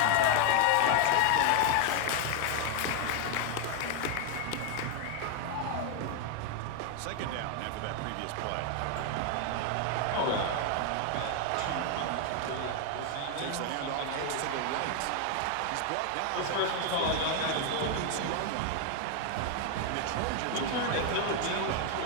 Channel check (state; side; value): different; both; correlation 0.01